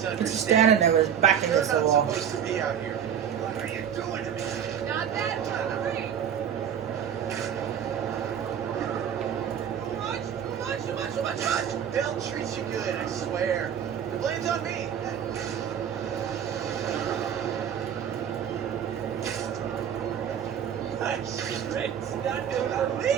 He's just standing there with his back You're against the not wall. supposed to be out here. What are you doing to me? Not that hungry. Too much. They'll treat you good, I swear. The blame's on me. Nice. It's not gonna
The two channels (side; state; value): left; quieter; 8.7 dB